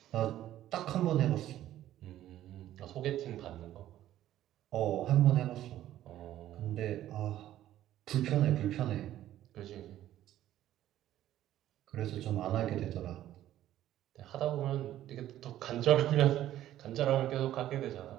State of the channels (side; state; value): left; quieter; 13.0 dB